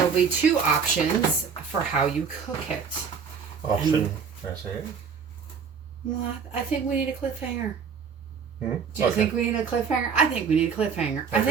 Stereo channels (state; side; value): quieter; left; 6.3 dB